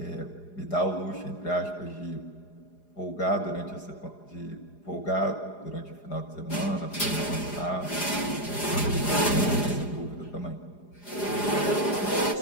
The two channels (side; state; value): right; late; 4.9 ms